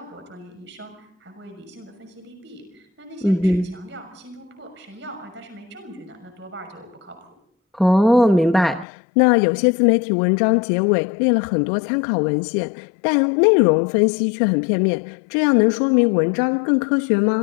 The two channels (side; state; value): right; drops out; at 8.8 s